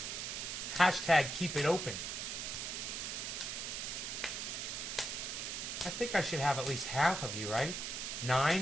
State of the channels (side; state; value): right; noise; hiss, 4 dB below the sound